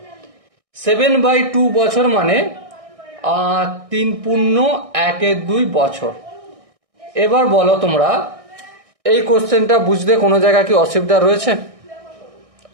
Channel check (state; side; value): late; left; 1.6 ms